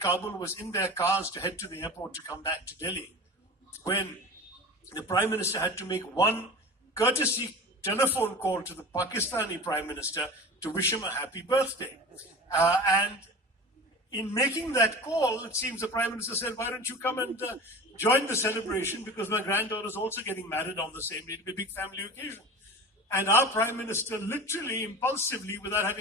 was in their cars to head to the airport to come back to Delhi, when the Prime Minister had to make one courtesy telephone call to the Pakistani Prime Minister to wish him a happy birthday. And in making that call, it seems the Prime Minister said, why don't you come and join the celebration, because my granddaughter is also getting married on the same day. It'll be a big family occasion. And our Prime Minister literally, impulsively, without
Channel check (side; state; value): both; normal; correlation 0.34